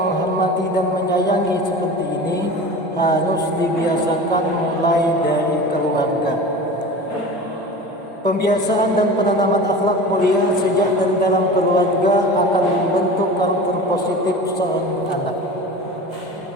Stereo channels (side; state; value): both; normal; correlation 0.35